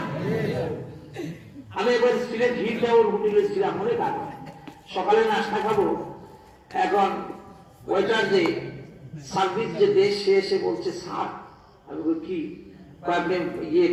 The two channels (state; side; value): identical; both; correlation 1.00